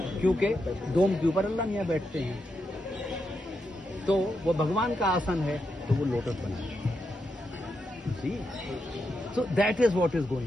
क्योंकि डोम के ऊपर अल्लाह मियाँ बैठते हैं। तो वो भगवान का आसन है, तो वो लोटस बना है। See, so that is what is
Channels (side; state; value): both; normal; correlation 0.84